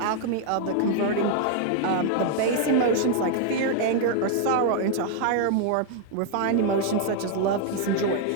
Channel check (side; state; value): both; different; correlation 0.00